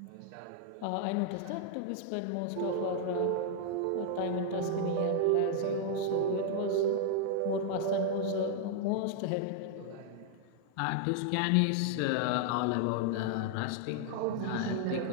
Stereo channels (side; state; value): both; different; correlation -0.01